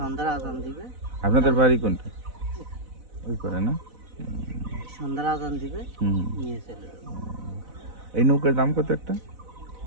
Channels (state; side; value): late; left; 4.0 ms